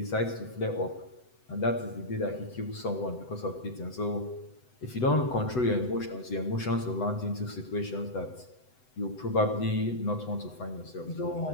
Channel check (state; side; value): late; right; 7.9 ms